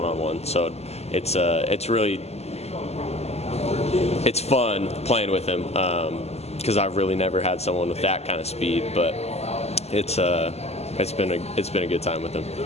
So it's fun playing with him, because I've really never had someone with that kind of speed. But it's been a good time with him.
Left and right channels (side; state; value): right; late; 0.30 ms